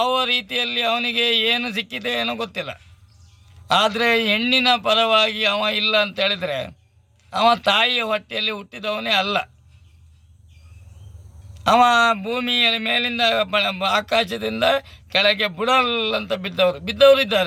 ರೀತಿಯಲ್ಲಿ ಅವನಿಗೆ ಏನು ಸಿಕ್ಕಿದೆ ಏನೋ ಗೊತ್ತಿಲ್ಲ. ಆದರೆ ಹೆಣ್ಣಿನ ಪರವಾಗಿ ಅವ ಇಲ್ಲ ಅಂತ ಹೇಳಿದರೆ ಅವ ತಾಯಿಯ ಹೊಟ್ಟೆಯಲ್ಲಿ ಹುಟ್ಟಿದವನೇ ಅಲ್ಲ. ಅವ ಭೂಮಿಯ ಮೇಲಿಂದ ಆಕಾಶದಿಂದ ಕೆಳಗೆ ಬುಡಲ್ ಅಂತ ಬಿದ್ದವರು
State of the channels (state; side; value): identical; both; correlation 1.00